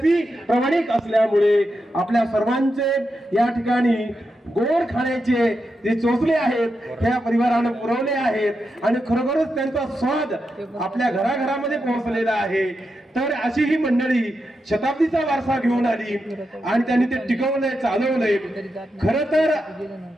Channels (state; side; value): normal; both; correlation 0.87